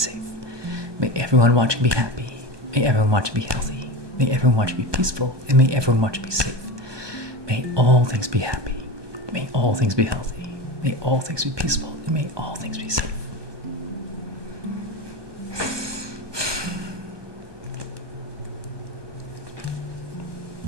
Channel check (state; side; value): late; left; 1.2 ms